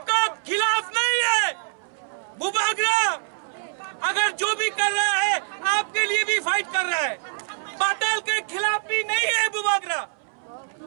खिलाफ नहीं है। बुबागरा अगर जो भी कर रहा है आपके लिए भी फाइट कर रहा है। पाताल के खिलाफ भी नहीं है बुबागरा,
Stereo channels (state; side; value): silent; left; 62 dB below the other